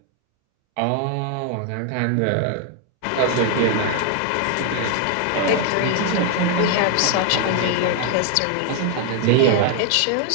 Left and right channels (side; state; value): both; different; correlation 0.00